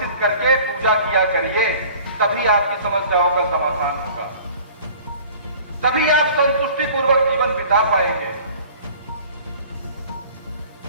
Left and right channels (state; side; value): inverted; both; correlation -0.47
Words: करके पूजा किया करिए, तभी आपकी समस्याओं का समाधान होगा, तभी आप संतुष्टि पूर्वक जीवन बिता पाएंगे।